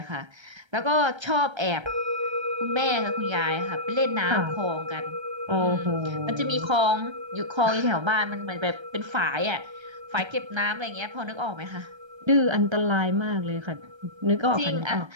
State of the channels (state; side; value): late; left; 1.3 ms